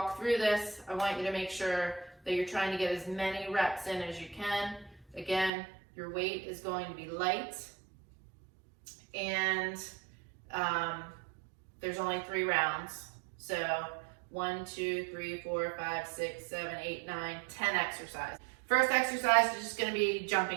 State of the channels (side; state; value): left; drops out; at 5.5 s